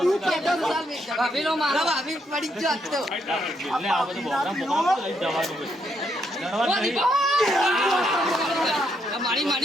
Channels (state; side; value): normal; both; correlation 0.76